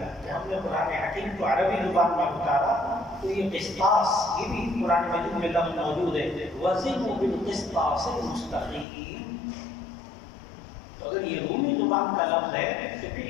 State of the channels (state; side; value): drops out; right; at 8.8 s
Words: کہ ہم نے قرآن حکیم کو عربی زبان میں اتارا. تو یہ قسطاس یہ بھی قرآن مجید میں لفظ موجود ہے، وزنوا بالقسطاس المستقیم. تو اگر یہ رومی زبان کا لفظ ہے تو پھر